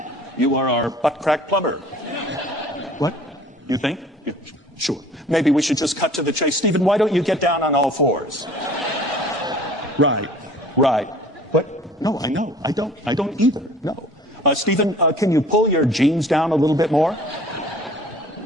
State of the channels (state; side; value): normal; both; correlation 0.49